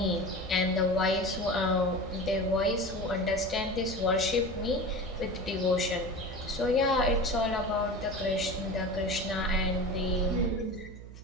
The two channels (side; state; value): right; noise; hum, 15 dB below the sound